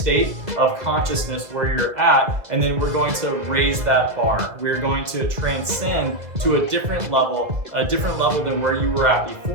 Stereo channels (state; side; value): late; left; 1.9 ms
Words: of consciousness where you're at, and then we're going to raise that bar. We're going to transcend to a different level than where you were at